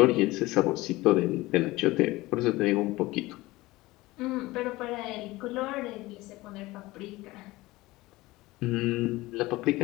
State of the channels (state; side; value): quieter; right; 19.7 dB